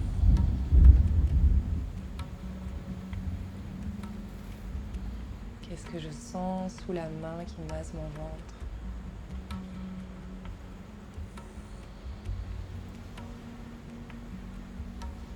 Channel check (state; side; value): identical; both; correlation 1.00